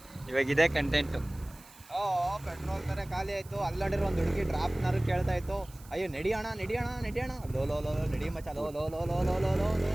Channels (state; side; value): noise; right; hiss, 23 dB below the sound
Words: ಇವಾಗ ಇದೇ ಕಂಟೆಂಟು. ಪೆಟ್ರೋಲ್ ಬೇರೆ ಖಾಲಿ ಆಯಿತು. ಅಲ್ಲಡಿರೋ ಒಂದು ಹುಡುಗಿ ಡ್ರಾಪ್ನಾರು ಕೇಳ್ತಾ ಇತ್ತು, ಅಯ್ಯೋ ನಡಿಯೋಣ ಲೋ ಲೋ ಲೋ ನಡಿ ಮಚ್ಚ, ಲೋ ಲೋ ಲೋ ಲೋ ಲೋ ಲೋ ಲೋ